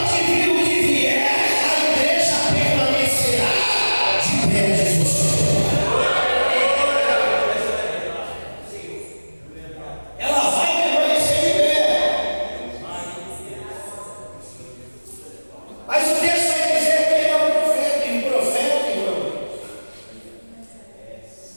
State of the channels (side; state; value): both; inverted; correlation -1.00